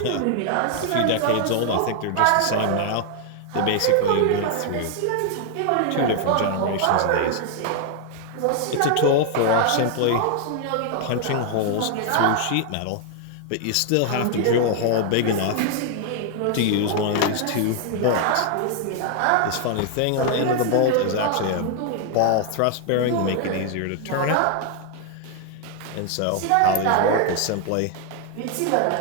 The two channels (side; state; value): both; different; correlation 0.00